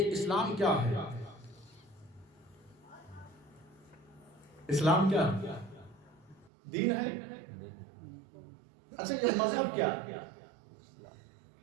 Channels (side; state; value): left; drops out; at 6.5 s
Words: اسلام کیا ہے؟ اسلام کیا ہے؟ دین ہے. اچھا یہ مذہب کیا ہے؟